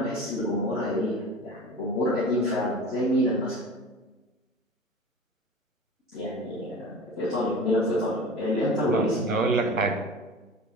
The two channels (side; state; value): both; normal; correlation 0.37